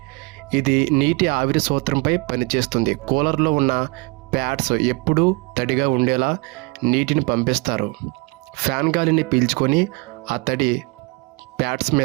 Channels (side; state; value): left; quieter; 28.2 dB